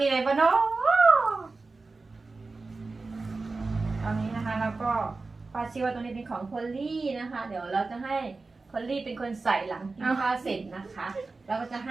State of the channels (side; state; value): left; quieter; 3.8 dB